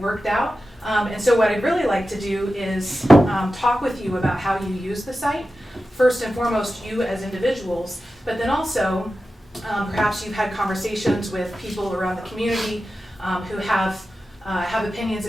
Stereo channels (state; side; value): normal; both; correlation 0.93